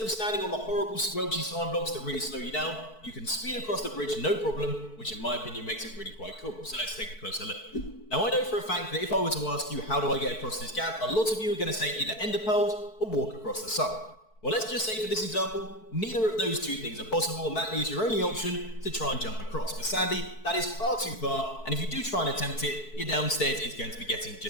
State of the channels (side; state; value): right; late; 4.6 ms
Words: standing on the horrible squelchy slime blocks that really slow you down, you can speed across the bridge no problem, which in my opinion makes it really quite cool. So let's take a closer look. Now I know for a fact that if I were to ask you how do I get across this gap, a lot of you are going to say either ender pearls or walk across the side. Well, let's just say for this example, neither of those two things are possible, and that leaves your only option to try and jump across. But sadly, that is far too far, and if you do try and attempt it, your downstairs is going to be getting